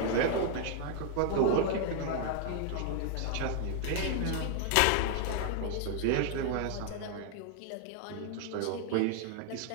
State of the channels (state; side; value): different; both; correlation 0.00